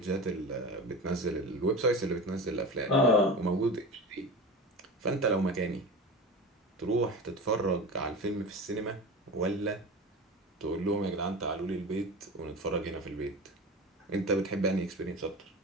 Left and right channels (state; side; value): normal; both; correlation 0.30